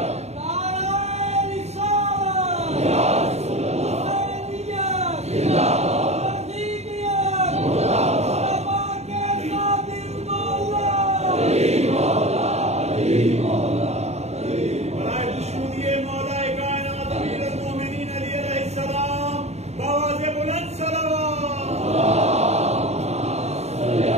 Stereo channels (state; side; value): late; left; 0.31 ms